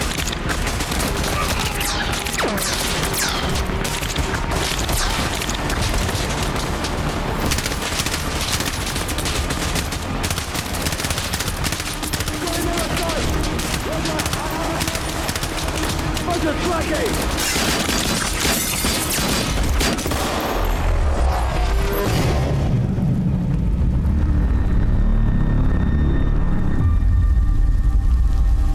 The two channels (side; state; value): both; identical; correlation 1.00